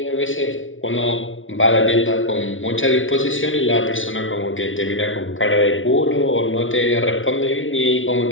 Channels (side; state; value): right; late; 0.57 ms